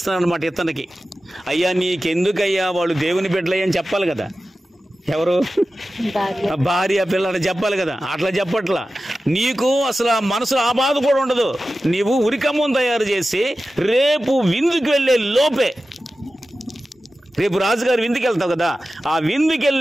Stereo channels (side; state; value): both; normal; correlation 0.94